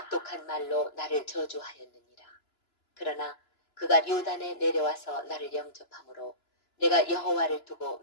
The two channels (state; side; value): late; right; 2.9 ms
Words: 말로 나를 저주하였느니라. 그러나 그가 요단에 내려와서 나를 영접함으로 내가 여호와를 두고